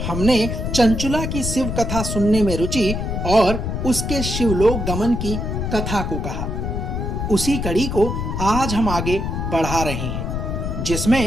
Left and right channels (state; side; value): noise; left; rumble, 3 dB below the sound